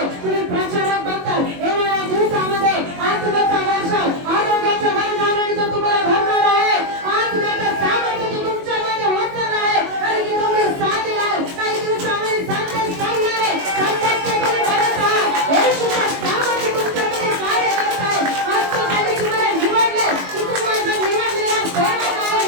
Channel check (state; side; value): late; left; 21 ms